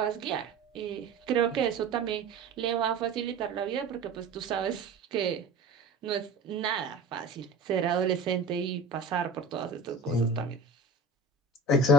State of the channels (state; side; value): quieter; left; 3.8 dB